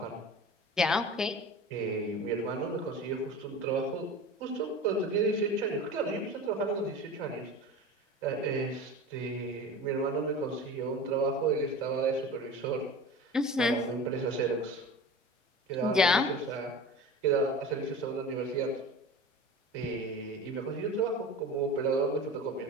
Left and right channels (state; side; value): normal; both; correlation 0.35